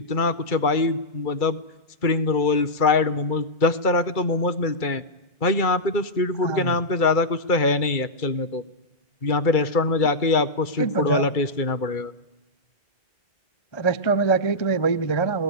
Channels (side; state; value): right; late; 2.3 ms